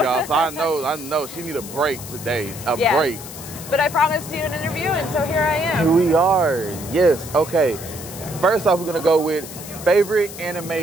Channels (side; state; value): left; noise; hiss, 13 dB below the sound